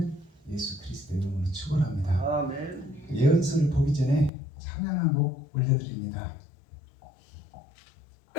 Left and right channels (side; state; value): right; drops out; at 4.3 s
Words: 예수 그리스도의 이름으로 축원합니다. 아멘. 예언서를 보기 전에 찬양 한 곡 올려드립니다.